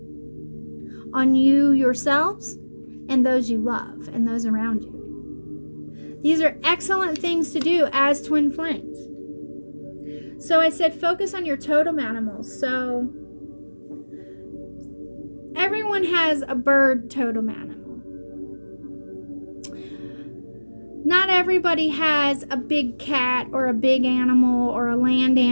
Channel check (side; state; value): both; inverted; correlation -1.00